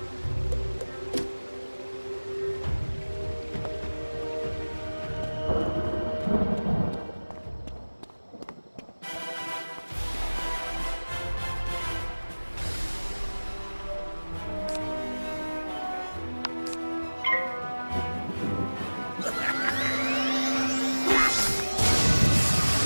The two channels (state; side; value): inverted; both; correlation -1.00